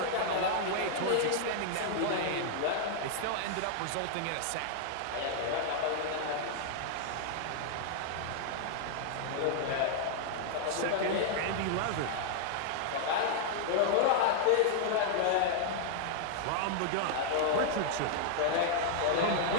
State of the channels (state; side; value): different; both; correlation -0.01